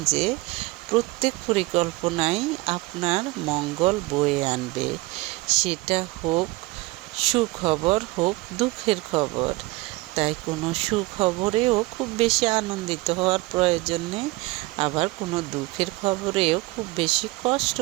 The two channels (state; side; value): quieter; left; 22.0 dB